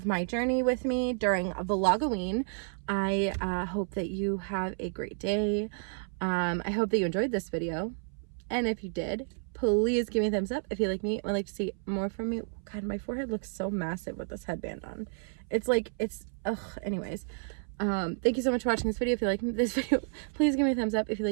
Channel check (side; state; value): left; silent; 57 dB below the other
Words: my journey with me during Vlogoween. I hope that you have a great day. I hope that you enjoyed this video. And if you did, please give me a thumbs up if you like me and would like to see more from me. God, my forehead looks so massive with this headband on. It's like, anyways. Thank you so much for watching this video. If you like this video, please give me a thumbs up. If you